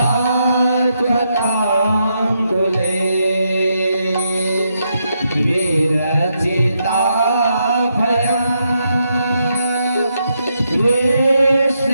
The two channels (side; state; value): both; inverted; correlation -0.81